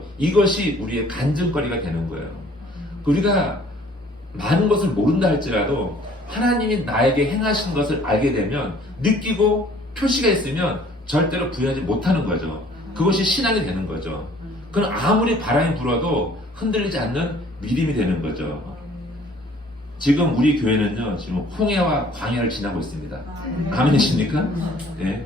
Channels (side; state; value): both; normal; correlation 0.56